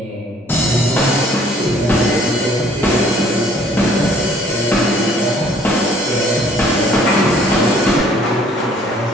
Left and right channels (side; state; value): both; normal; correlation 0.59